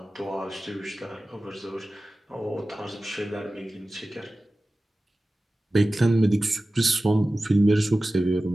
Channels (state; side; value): normal; both; correlation 0.96